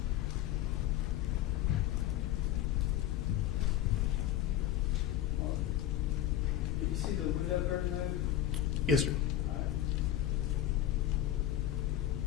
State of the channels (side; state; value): right; quieter; 12.2 dB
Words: Did you see the window curtain move? Yes, sir.